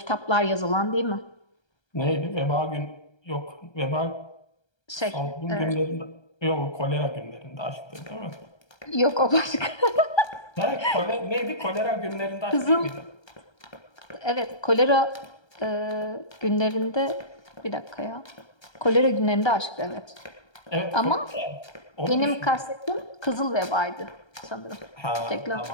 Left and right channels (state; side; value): late; right; 1.3 ms